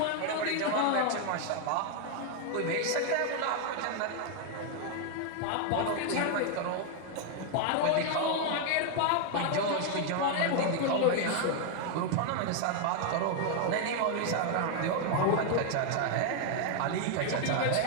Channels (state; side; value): different; both; correlation 0.00